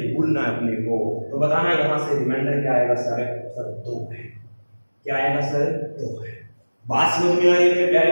भूलना है अपने को। तो बताना यहां से रिमाइंडर क्या आएगा सर? 2 है। क्या आएगा सर? 2 है। बात समझ में आ रही है मेरे प्यारे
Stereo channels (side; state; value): both; inverted; correlation -1.00